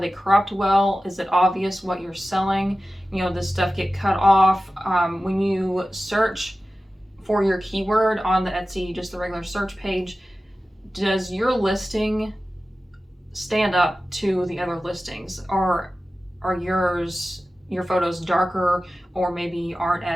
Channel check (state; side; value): normal; both; correlation 0.95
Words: cropped well? Is it obvious what you're selling? Does stuff get cut off? When you search for your keyword on the Etsy, just the regular search page, does your listing stand up to the other listings? Or are your photos darker or maybe aren't